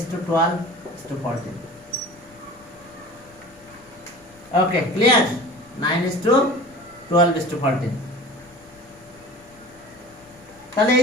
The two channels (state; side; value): noise; left; rumble, 27 dB below the sound